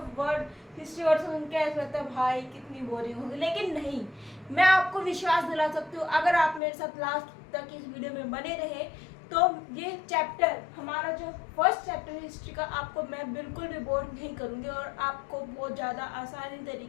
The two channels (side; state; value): right; drops out; at 6.6 s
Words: वर्ड सुन के ऐसा लगता है भाई कितनी बोरिंग होगी, लेकिन नहीं, मैं आपको विश्वास दिला सकती हूँ अगर आप मेरे साथ लास्ट तक इस वीडियो में बने रहे तो ये चैप्टर, हमारा जो फर्स्ट चैप्टर है हिस्ट्री का, आपको मैं बिल्कुल भी बोर नहीं करूँगी और आपको बहुत ज़्यादा आसानी